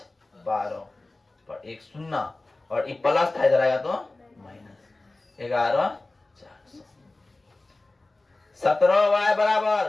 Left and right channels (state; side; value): quieter; right; 3.0 dB